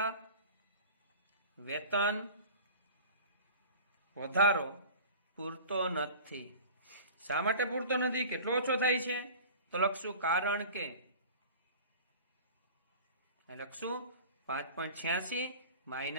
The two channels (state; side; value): inverted; both; correlation -0.40